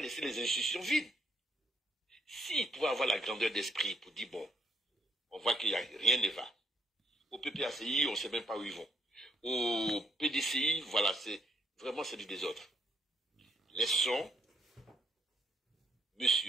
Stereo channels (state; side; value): normal; both; correlation 0.71